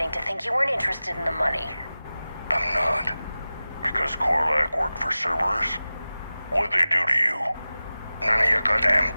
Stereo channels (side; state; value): both; inverted; correlation -0.96